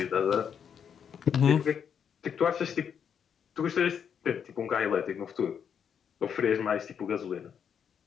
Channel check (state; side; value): quieter; right; 7.7 dB